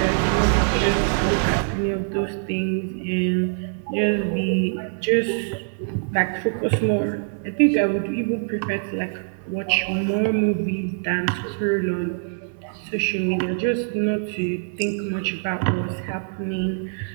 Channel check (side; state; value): left; silent; 62 dB below the other